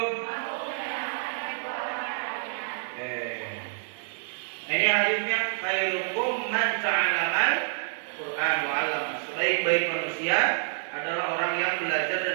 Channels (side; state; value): left; silent; 59 dB below the other